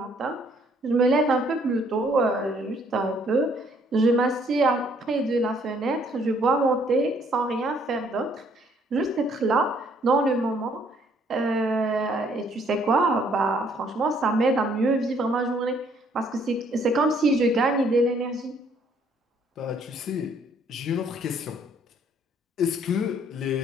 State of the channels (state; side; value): normal; both; correlation 0.64